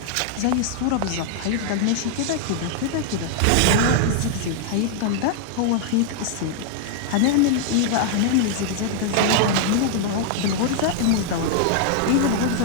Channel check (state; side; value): different; both; correlation 0.00